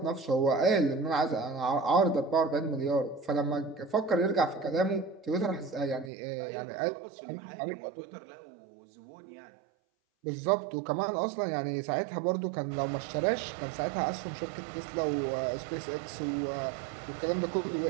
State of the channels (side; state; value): left; drops out; at 6.1 s